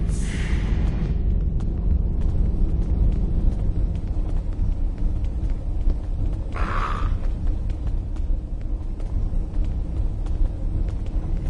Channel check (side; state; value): both; identical; correlation 1.00